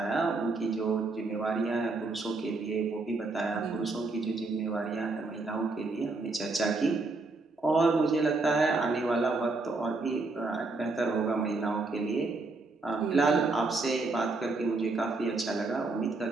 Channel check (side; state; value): left; quieter; 3.5 dB